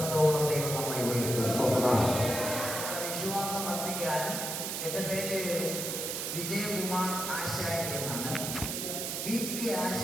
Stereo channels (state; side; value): noise; right; hiss, 3 dB below the sound